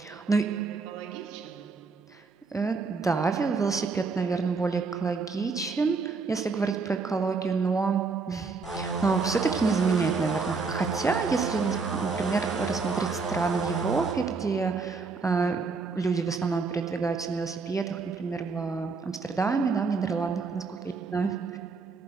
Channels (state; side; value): quieter; left; 4.5 dB